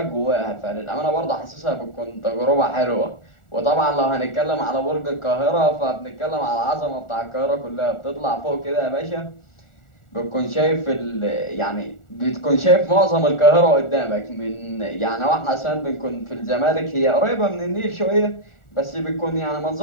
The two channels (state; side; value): late; right; 1.4 ms